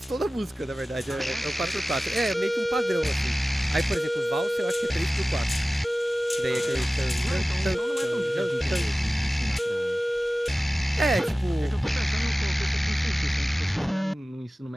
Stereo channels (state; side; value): normal; both; correlation 0.97